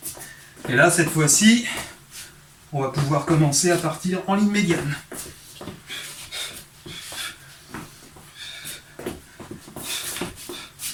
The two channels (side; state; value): both; identical; correlation 1.00